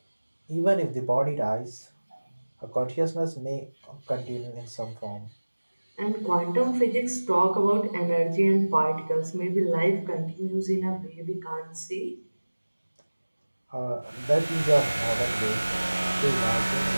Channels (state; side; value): inverted; both; correlation -1.00